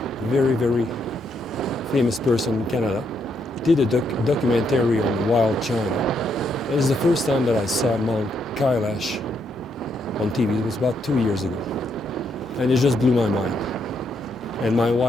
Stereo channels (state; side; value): normal; both; correlation 0.77